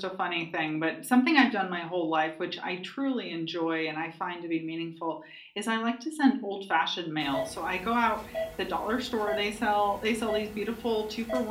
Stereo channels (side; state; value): both; identical; correlation 1.00